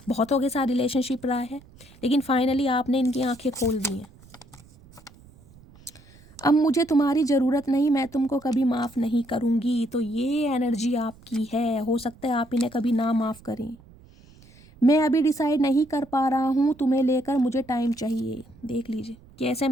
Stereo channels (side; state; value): right; noise; rumble, 25 dB below the sound